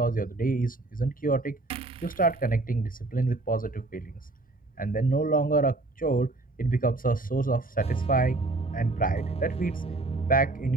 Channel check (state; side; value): quieter; left; 3.0 dB